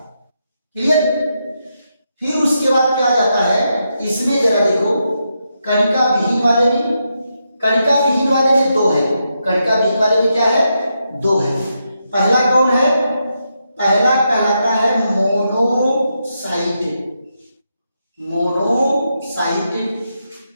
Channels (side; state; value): both; inverted; correlation -0.83